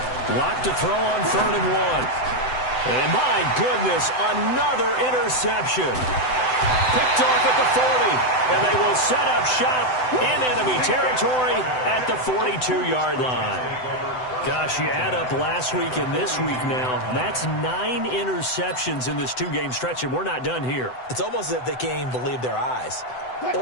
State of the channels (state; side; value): late; right; 7.9 ms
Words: Lock to throw on 3rd and 1. And my goodness, another interception. Picked off at the 40, and they will set up shop in enemy territory at the 42-yard line. Gosh, you add up last week and this week now, that's 9 interceptions in this 2-game stretch, and we're not done here. It's almost as if they can't even believe their eyes.